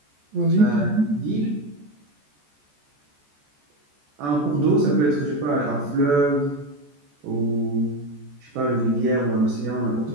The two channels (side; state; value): left; late; 14 ms